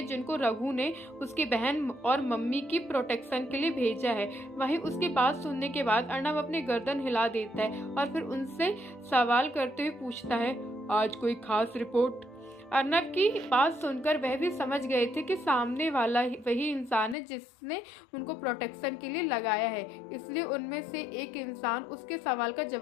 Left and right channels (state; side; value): drops out; right; at 17.2 s